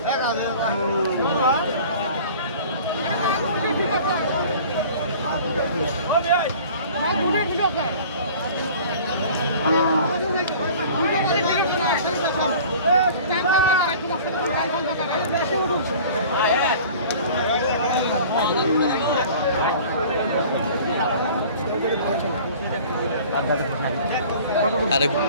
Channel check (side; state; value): both; inverted; correlation -0.45